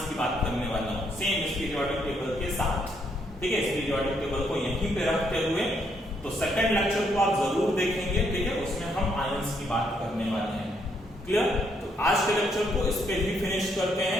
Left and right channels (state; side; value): normal; both; correlation 0.73